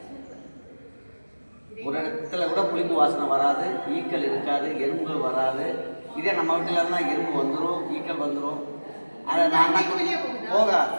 ஒரு இடத்துல கூட புளிப்பு வாசனை வராது, ஈக்கள் இருக்காது, எறும்புகள் வராது. இதே நம்ம வீட்டில் இருந்தால் எறும்பு வந்துடும், ஈக்கள் வந்துடும். அதை நான் தான் போகாது,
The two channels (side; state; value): both; inverted; correlation -1.00